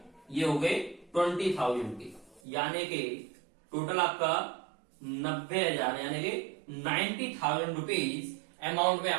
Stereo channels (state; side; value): drops out; left; at 2.4 s